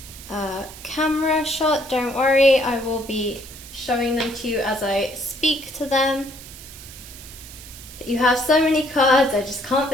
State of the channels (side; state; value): right; noise; hiss, 16 dB below the sound